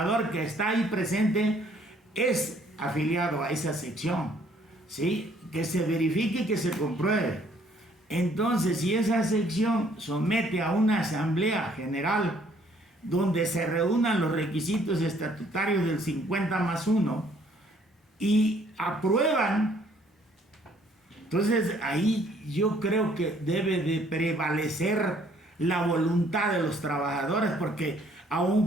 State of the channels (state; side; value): normal; both; correlation 0.62